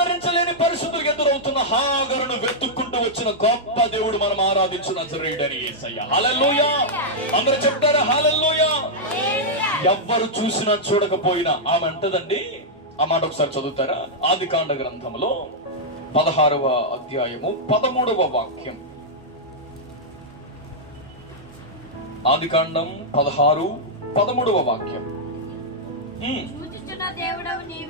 పరిస్థితులు ఎదురవుతున్న హాగరును వెతుక్కుంటూ వచ్చిన గొప్ప దేవుడు మనం ఆరాధించిన నజరేయుడైన యేసయ్య. హల్లెలూయా. అందరూ చెప్తారా హల్లెలూయా? ఎవ్వరు చూసినా చూడకపోయినా ఆమె అంటదండి. ఆ మాట ఒకసారి చదువుతారా? ఆదికాండ గ్రంథంలో 16వ అధ్యాయము 13వ వాక్యం. ఆదికాండం 16:13 వాక్యం.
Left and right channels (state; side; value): normal; both; correlation -0.07